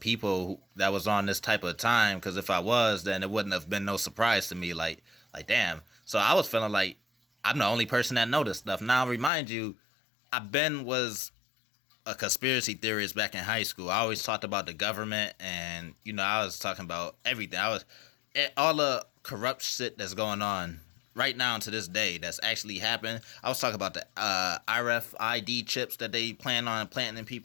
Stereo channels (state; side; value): drops out; right; at 9.3 s